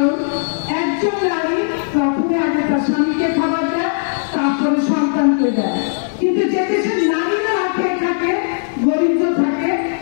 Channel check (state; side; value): silent; right; digital silence